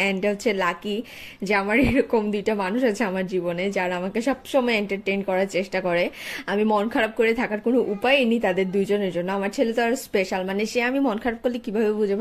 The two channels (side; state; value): both; identical; correlation 1.00